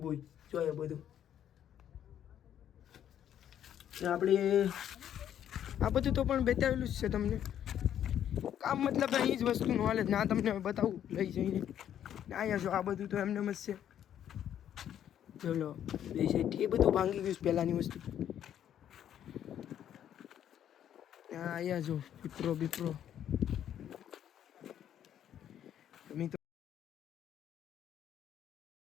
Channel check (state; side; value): quieter; right; 10.2 dB